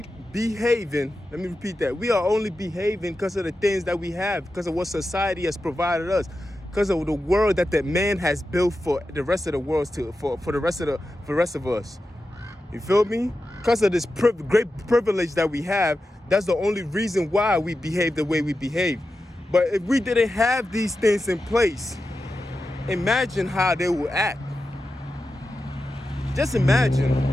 me repeat that. We are only behaving because of the things that we have, because of what society has provided us, because of the world that man has built for the rest of the world, for the rest of us. You feel me? Because of this great privilege that we have, that's the only reason why we behave the way we behave. But if we didn't have these things in place, imagine how they would act. Just imagine.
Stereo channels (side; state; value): both; normal; correlation 0.91